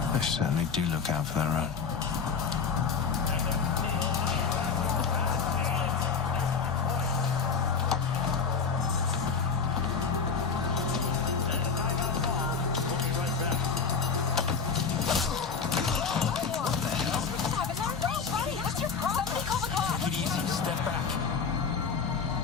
They certainly do look out for their own. Take it easy. Step back.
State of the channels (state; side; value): quieter; right; 5.7 dB